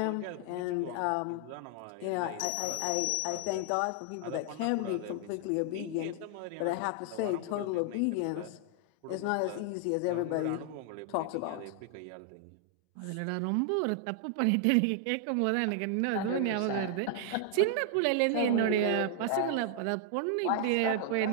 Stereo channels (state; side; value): different; both; correlation 0.00